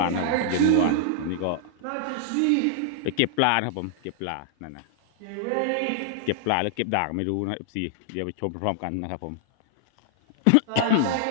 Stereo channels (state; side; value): different; both; correlation 0.00